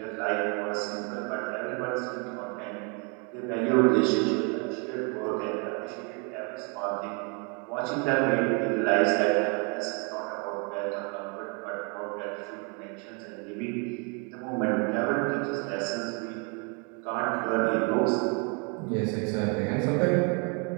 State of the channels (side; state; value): left; quieter; 34.9 dB